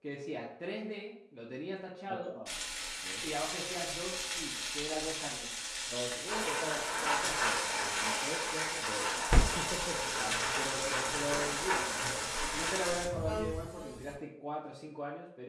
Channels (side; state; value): both; identical; correlation 1.00